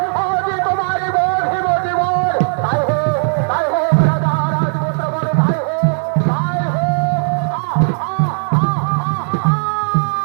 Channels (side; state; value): left; silent; digital silence